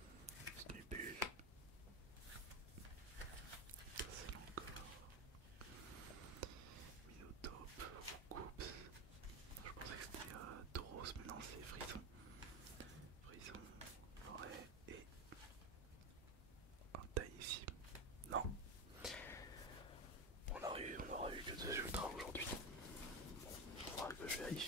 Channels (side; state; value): both; normal; correlation 0.16